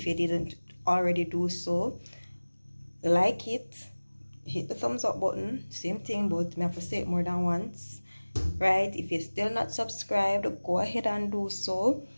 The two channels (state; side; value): inverted; both; correlation -1.00